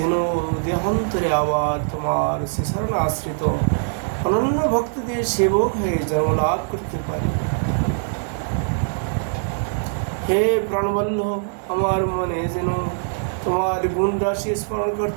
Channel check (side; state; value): left; silent; digital silence